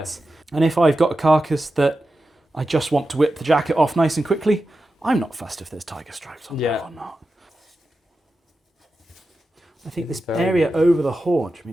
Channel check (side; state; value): both; normal; correlation 0.92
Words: And if I've got a carcass that I just want to whip the jacket off nice and quickly, I'm not fussed if there's tiger stripes on there or not. I think this area over the haunch, I